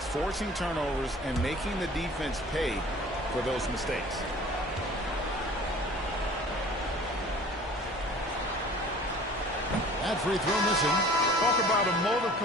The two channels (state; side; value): normal; both; correlation 0.47